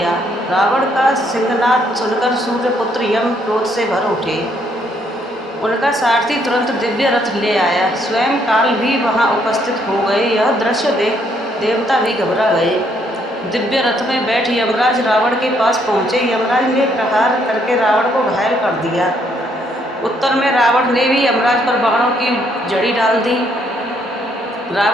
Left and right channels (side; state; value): both; normal; correlation 0.70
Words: रावण का सिंहनाद सुनकर सूर्यपुत्र यम क्रोध से भर उठे। उनका सारथी तुरंत दिव्य रथ ले आया। स्वयं काल भी वहां उपस्थित हो गए। यह दृश्य देख देवता भी घबरा गए। दिव्य रथ में बैठ यमराज रावण के पास पहुंचे। यमराज ने प्रहार करके रावण को घायल कर दिया। उत्तर में रावण ने भी यमराज पर बाणों की झड़ी डाल दी।